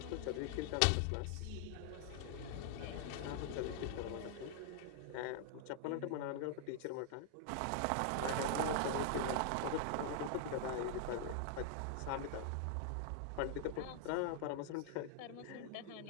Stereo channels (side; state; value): both; different; correlation 0.00